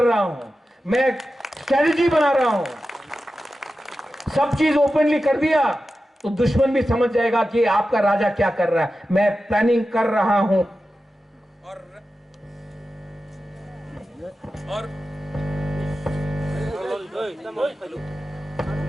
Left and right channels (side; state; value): both; normal; correlation 0.92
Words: हूं, मैं स्ट्रेटजी बना रहा हूं। सब चीज ओपनली कर दिया तो दुश्मन भी समझ जाएगा कि आपका राजा क्या कर रहा है। मैं प्लानिंग कर रहा हूं